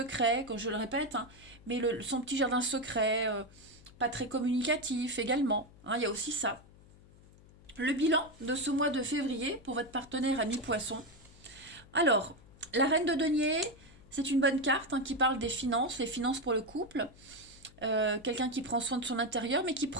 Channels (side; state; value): left; noise; hum, 24 dB below the sound